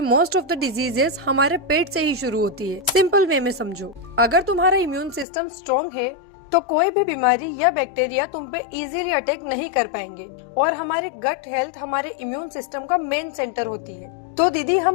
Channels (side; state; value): right; drops out; at 5.2 s